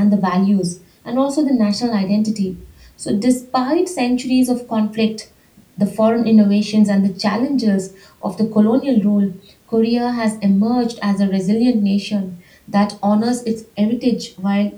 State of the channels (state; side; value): identical; both; correlation 1.00